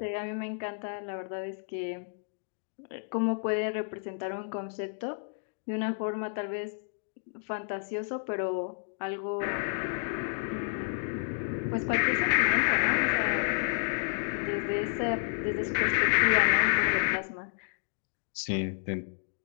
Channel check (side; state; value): right; silent; digital silence